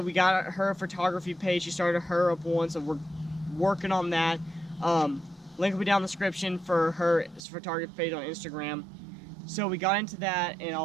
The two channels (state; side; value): drops out; left; at 7.5 s